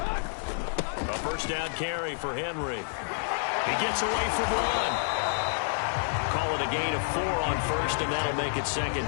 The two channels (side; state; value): right; silent; digital silence